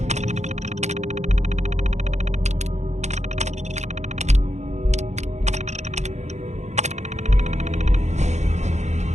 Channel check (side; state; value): left; late; 0.33 ms